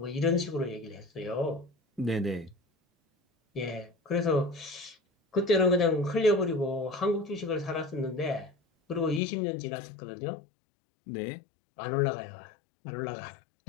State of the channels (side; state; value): right; drops out; at 9.2 s